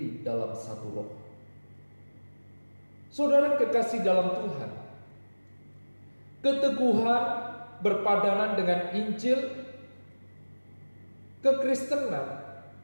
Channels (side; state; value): both; inverted; correlation -1.00